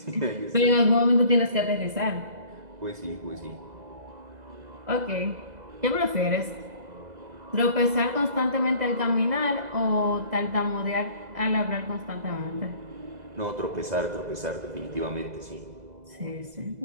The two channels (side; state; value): left; late; 2.0 ms